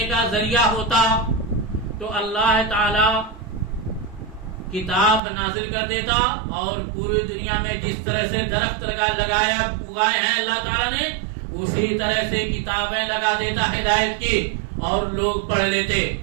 کا ذریعہ ہوتا تو اللہ تعالی کتاب نازل کر دیتا اور پوری دنیا میں جس طرح سے درخت اگائے ہیں اللہ تعالیٰ نے اسی طرح سے کتابیں لگا دیتا ہدایت کی اور لوگ پڑھ لیتے،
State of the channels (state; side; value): drops out; left; at 5.2 s